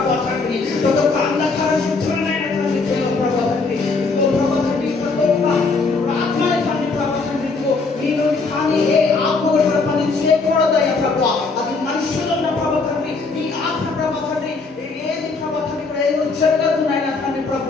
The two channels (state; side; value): quieter; right; 4.1 dB